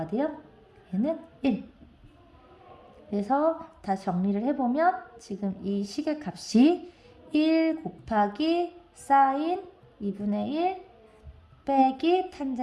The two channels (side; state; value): both; identical; correlation 1.00